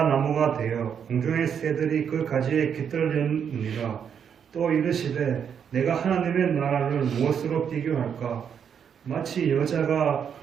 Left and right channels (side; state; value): left; quieter; 7.7 dB